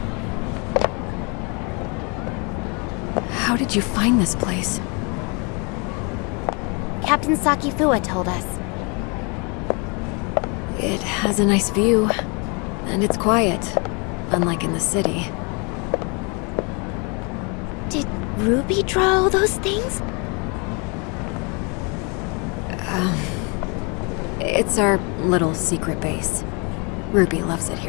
How did you find this place? Captain Sakifua told us. It has a nice view, and it's quiet, unlike in the city. Did Ruby draw all those things? It's our little secret base. Ruby loves it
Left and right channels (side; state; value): right; quieter; 32.7 dB